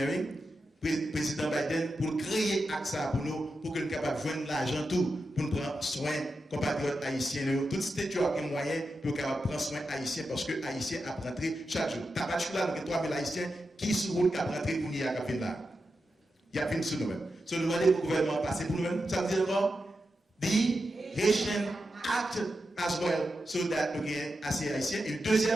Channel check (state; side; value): normal; both; correlation 0.89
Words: président Biden, pour créer AXA pour nous, pour que nous soyons capables de joindre l'argent tout, pour nous prendre soin compatriotes haïtiens. Tout ce qui a moyen pour prendre soin haïtiens, parce que haïtiens a rentré chaque jour. Tabac là, nous avons 3000 haïtiens qui sont route qui a rentré pour nous à là. Il y a plus sur nous-mêmes. So nous demandons au gouvernement passer pour nous-mêmes. Ça veut dire quoi? The Haitian Act as well, so that nous avons assez haïtiens. Et